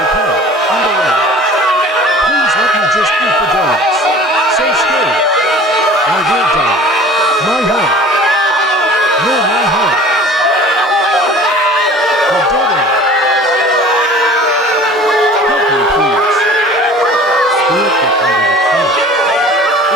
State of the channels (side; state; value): both; normal; correlation 0.45